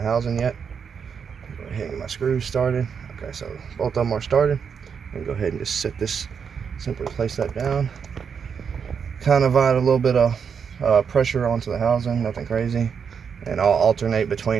housing yet. Go ahead and get my screws started. Okay, so both of them are started. And go ahead and just set this, simply place that down. Kind of add a little bit of pressure onto the housing, nothing crazy. And I'll alternate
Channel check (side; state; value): left; quieter; 6.7 dB